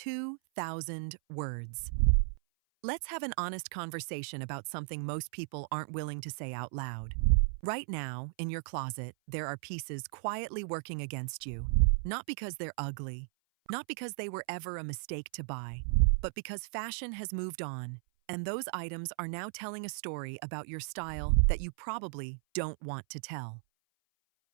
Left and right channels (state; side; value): silent; left; 54 dB below the other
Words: words. Let's have an honest conversation about something most people aren't willing to say out loud. Right now, in your closet, there are pieces quietly working against you, not because they're ugly, not because they were ever a mistake to buy, but because fashion has moved on, and those items are now telling a story about your style that you probably don't want to tell.